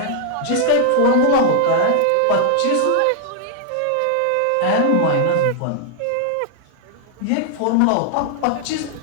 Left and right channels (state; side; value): different; both; correlation 0.00